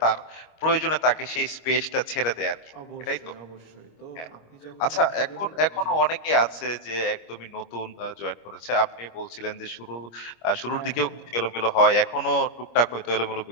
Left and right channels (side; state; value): right; late; 25 ms